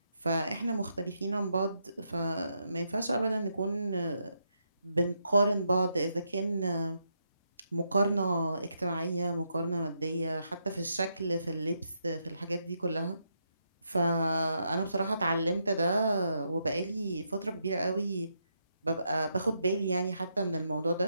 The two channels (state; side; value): inverted; both; correlation -0.80